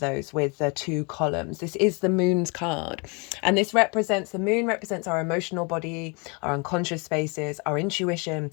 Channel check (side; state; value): right; quieter; 32.2 dB